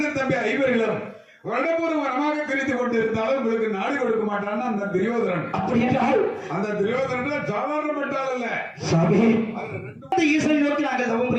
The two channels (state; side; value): identical; both; correlation 1.00